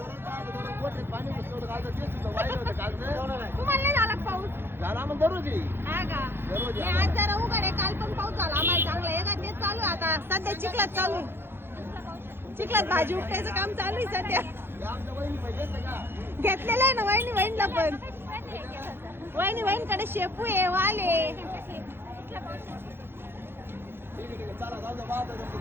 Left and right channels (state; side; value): late; left; 0.11 ms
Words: तुम्हाला नाही झाला का पाऊस? झाला मग दररोज हा का? हे आज जरा उघड आहे. काल पण पाऊस झाला आम्हाला चांगला आहे का? तेच चालू आहे आता. सध्या चिखलात चालू आहे. चिखलात भाजी उपटायचं काम चालू आहे सध्या. घेतलेलं आहे ना वहिनीला पण. वहिनीकडे शेपू आहे, वाल आहे.